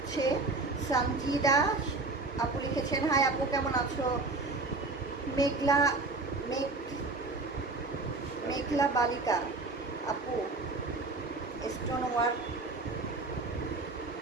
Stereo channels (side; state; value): left; quieter; 3.4 dB